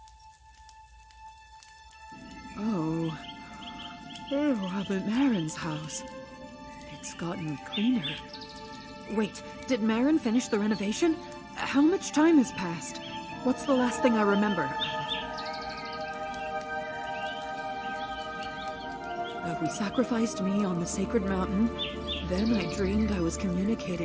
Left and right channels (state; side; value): identical; both; correlation 1.00